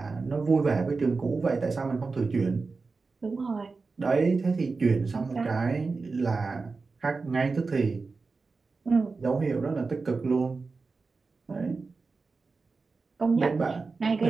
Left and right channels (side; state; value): left; quieter; 4.2 dB